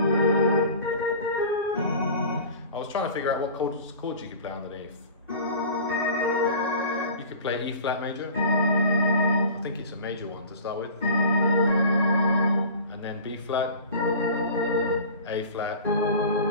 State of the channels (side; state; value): both; inverted; correlation -0.39